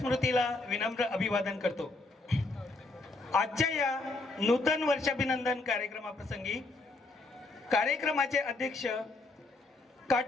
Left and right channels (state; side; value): quieter; right; 3.3 dB